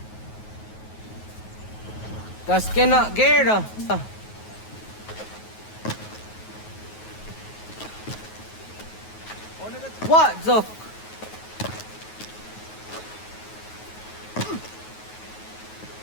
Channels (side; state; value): right; late; 9.4 ms